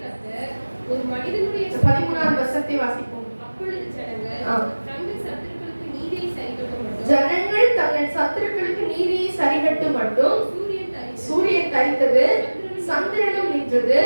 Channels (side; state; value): both; inverted; correlation -1.00